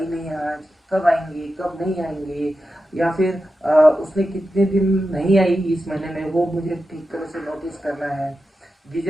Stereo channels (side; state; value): both; normal; correlation 0.91